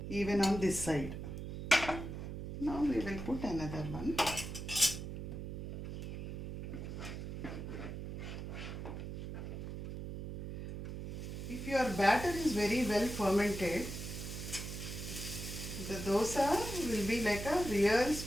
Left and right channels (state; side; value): noise; right; hum, 6 dB below the sound